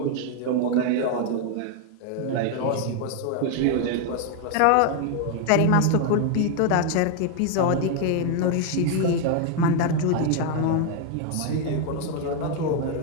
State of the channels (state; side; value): different; both; correlation 0.01